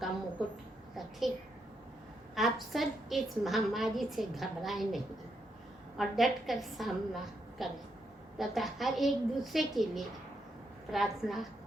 का मुकुट रखे। आप सब इस महामारी से घबराएं नहीं और डट कर सामना करें तथा हर एक दूसरे के लिए प्रार्थना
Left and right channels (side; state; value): both; normal; correlation 0.80